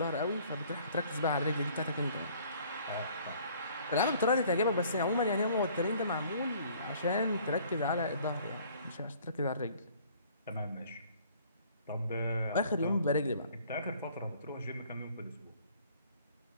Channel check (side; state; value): both; inverted; correlation -0.56